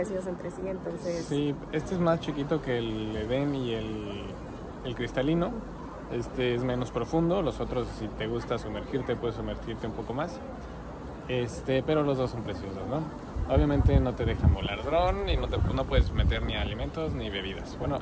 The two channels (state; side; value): identical; both; correlation 1.00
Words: entre sí, entonces... Sí, este es más chiquito que el Edén y el cristalino. Este es menos profundo. Los otros, si te gusta sumergirte, puedes sumergirte un poco más. Pero los dos son preciosos, ¿no? Obviamente no te dejan volar dron y no puedes meter ni alimentos ni bebidas. Bueno,